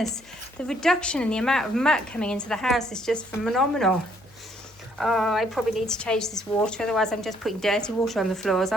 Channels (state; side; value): noise; left; hum, 29 dB below the sound